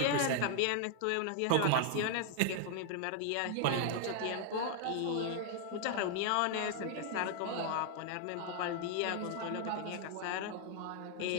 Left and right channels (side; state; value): both; different; correlation 0.00